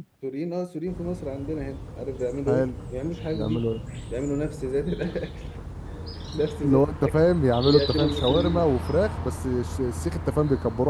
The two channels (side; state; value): both; identical; correlation 1.00